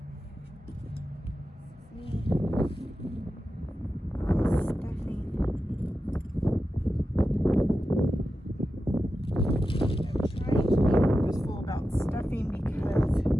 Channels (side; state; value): both; normal; correlation 0.91